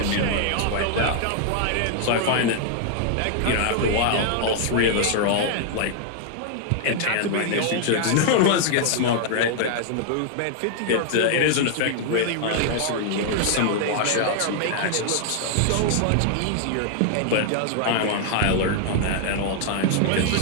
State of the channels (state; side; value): different; both; correlation -0.01